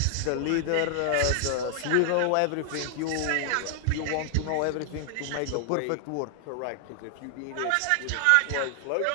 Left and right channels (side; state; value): both; different; correlation 0.00